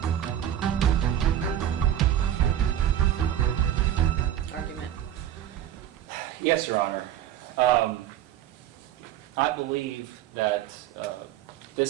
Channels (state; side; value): quieter; left; 11.2 dB